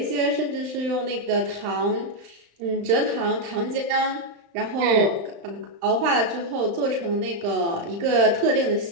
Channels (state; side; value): late; left; 35 ms